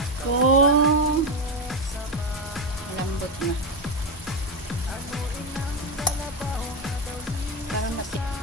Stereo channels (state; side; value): normal; both; correlation 0.12